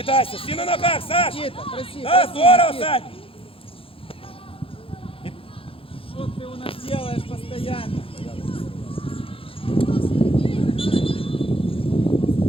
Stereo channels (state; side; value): late; right; 0.27 ms